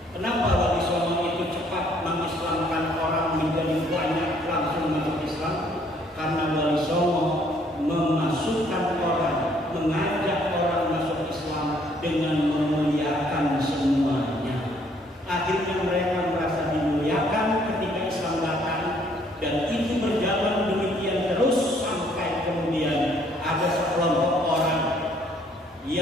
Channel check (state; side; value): normal; both; correlation 0.64